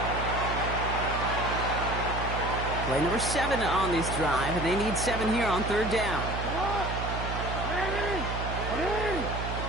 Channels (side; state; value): right; noise; hum, 4 dB below the sound